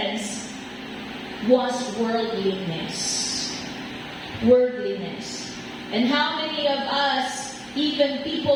was worldliness. Worldliness. And how many of us, even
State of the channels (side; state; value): both; identical; correlation 1.00